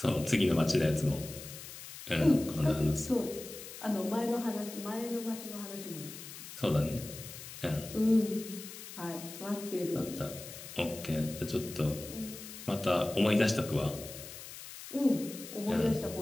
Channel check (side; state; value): left; noise; hiss, 12 dB below the sound